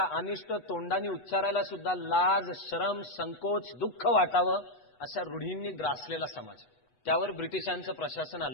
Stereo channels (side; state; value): right; late; 8.1 ms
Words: अनिष्ट तोंडाने उच्चारायला सुद्धा लाज, शरम, संकोच, दुःख वाटावं अशा रूढींनी ग्रासलेला समाज. त्यावर ब्रिटिशांचं प्रशासन